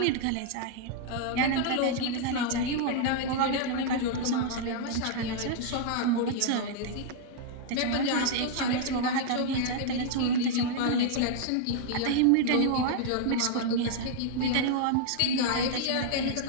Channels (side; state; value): both; different; correlation -0.01